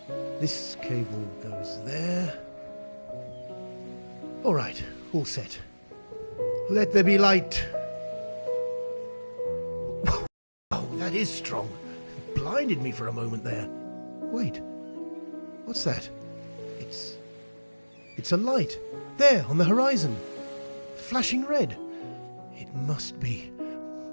This cable goes there. All right, all set. Let there be light. Oh, that is strong. It blinded me for a moment there. Wait, what's that? It's a light. There, on the horizon. Flashing red. It must be.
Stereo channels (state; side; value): inverted; both; correlation -1.00